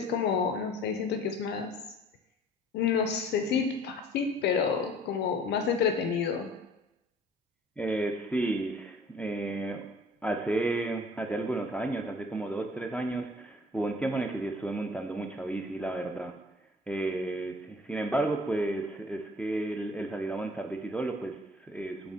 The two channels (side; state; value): both; normal; correlation 0.51